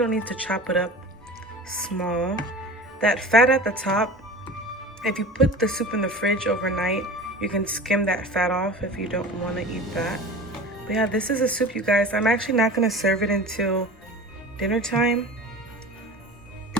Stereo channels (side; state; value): both; normal; correlation 0.36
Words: need to chop it up small. That fat at the top, if you put the soup in the fridge overnight, you can skim that fat off if you don't want to eat that. But yeah, this is a soup, you guys. I'm actually not going to serve it until dinner time.